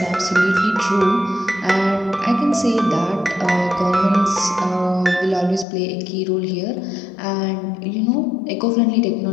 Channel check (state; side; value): drops out; right; at 5.7 s